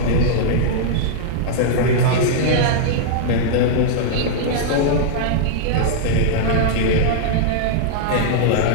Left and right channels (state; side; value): different; both; correlation -0.02